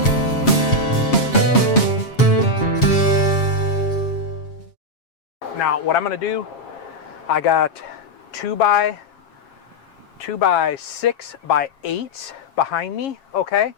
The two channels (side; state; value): right; late; 7.4 ms